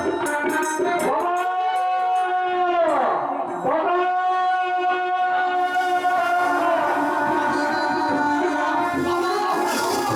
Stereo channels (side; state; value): both; identical; correlation 1.00